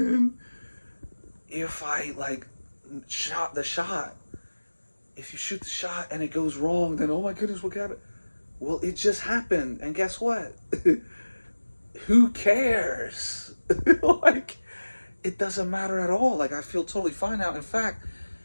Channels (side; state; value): both; inverted; correlation -1.00